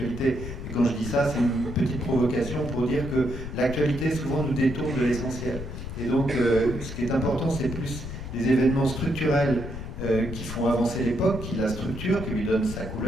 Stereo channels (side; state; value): left; noise; rumble, 8 dB below the sound